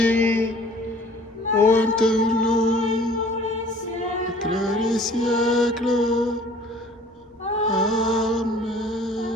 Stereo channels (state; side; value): normal; both; correlation 0.51